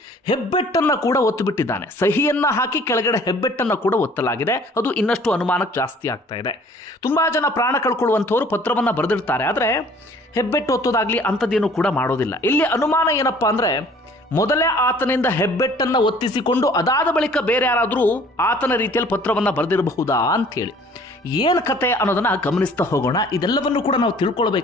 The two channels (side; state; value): both; normal; correlation 0.53